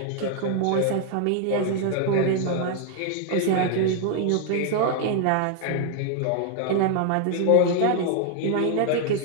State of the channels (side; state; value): both; different; correlation 0.00